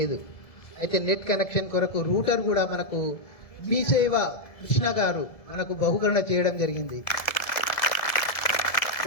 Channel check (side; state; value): right; late; 1.7 ms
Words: అయితే నెట్ కనెక్షన్ కొరకు రూటర్ కూడా మనకు మీ సేవ కృష్ణ గారు మనకు బహుకరణ చేయడం జరిగింది.